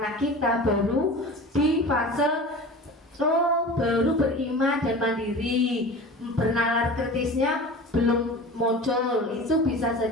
kita baru di fase baru beriman dan mandiri, bernalar kritisnya belum muncul, itu bisa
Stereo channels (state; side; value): normal; both; correlation 0.35